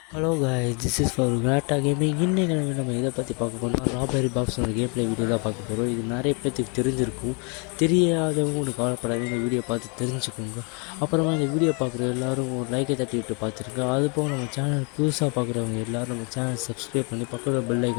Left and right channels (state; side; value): quieter; right; 34.7 dB